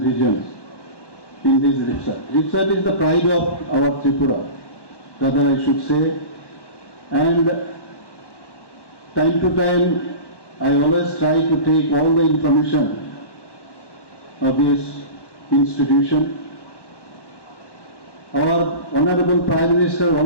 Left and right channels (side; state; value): right; late; 1.1 ms